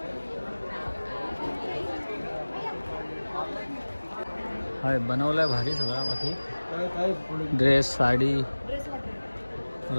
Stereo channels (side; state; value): both; inverted; correlation -1.00